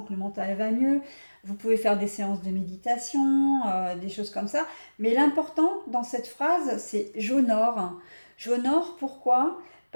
que le mental va mieux. Vous pouvez faire des séances de méditation, des choses comme ça. Mais l'important dans cette phrase, c'est j'honore. J'honore pourquoi?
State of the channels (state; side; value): inverted; both; correlation -1.00